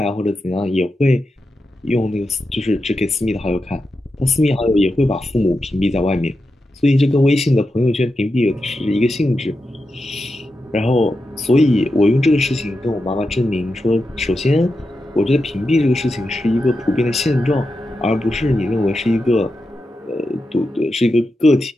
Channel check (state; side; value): normal; both; correlation 0.89